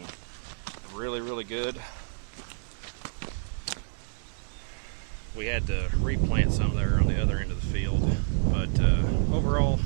really good. We had to replant some there on the other end of the field, but overall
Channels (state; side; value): silent; left; digital silence